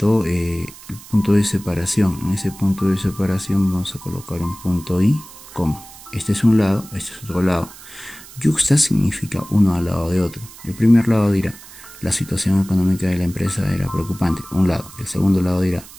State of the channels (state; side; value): noise; right; hiss, 18 dB below the sound